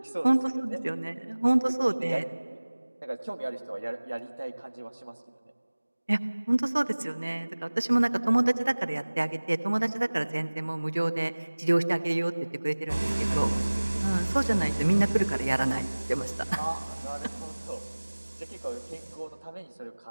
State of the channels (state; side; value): inverted; both; correlation -1.00